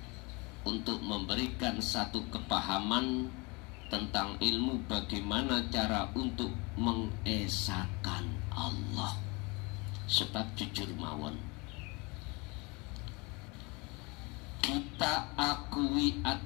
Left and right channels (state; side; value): quieter; right; 27.7 dB